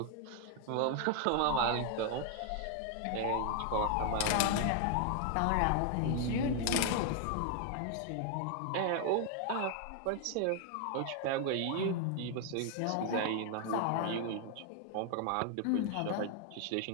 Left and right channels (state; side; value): different; both; correlation 0.00